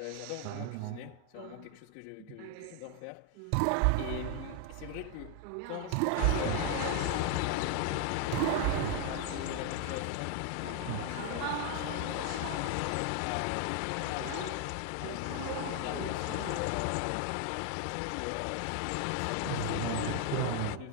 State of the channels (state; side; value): different; both; correlation 0.00